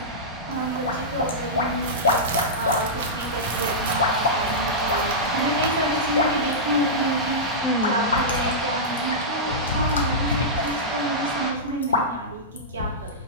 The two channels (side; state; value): both; normal; correlation -0.13